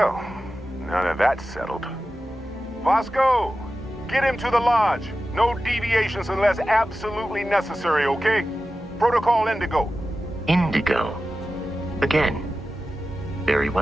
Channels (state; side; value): normal; both; correlation 0.94